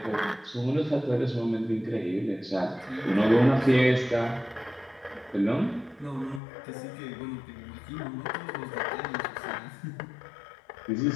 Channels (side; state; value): right; drops out; at 6.4 s